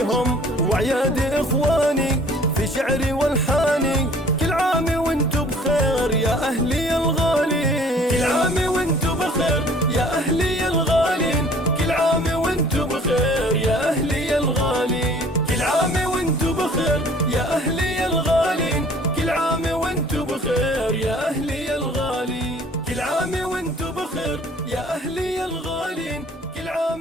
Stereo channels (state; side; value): normal; both; correlation 0.53